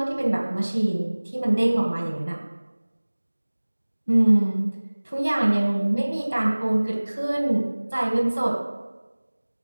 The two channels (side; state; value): both; inverted; correlation -1.00